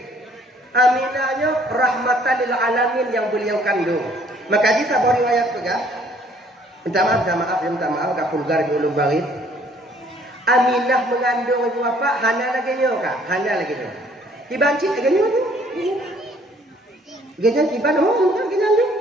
Aminahnya rahmatan lil alamin yang beliau kandung. Maka di sebuah riwayat juga, minta maaf, agak vulgar di ulum barit. Aminah mengandung ibu bapa, hana lagi nyo kah? Hana lagi nyo. Dibanci lagi nyo tu. Gajan tiban, oh, kan gajan tu.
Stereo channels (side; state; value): both; normal; correlation 0.60